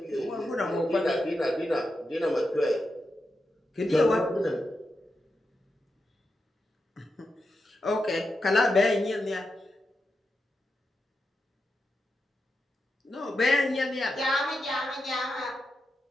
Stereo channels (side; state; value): both; normal; correlation 0.88